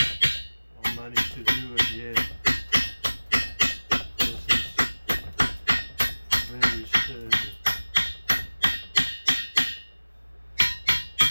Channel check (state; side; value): inverted; both; correlation -1.00